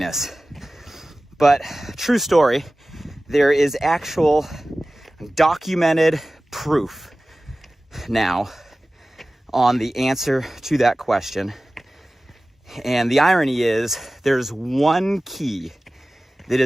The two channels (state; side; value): normal; both; correlation 0.97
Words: But true story, there is actual documented proof now on the answer to that question. And the irony is there's one key that